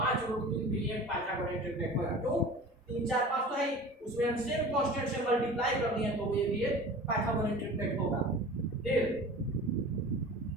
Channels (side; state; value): both; normal; correlation 0.39